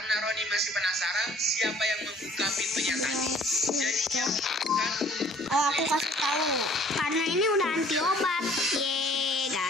Roni masih penasaran siapa yang membuka pintunya tadi, jadi dia memutuskan. Oh, aku kasih tahu. Karena ini udah anti obat. Yeay,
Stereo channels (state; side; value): normal; both; correlation 0.55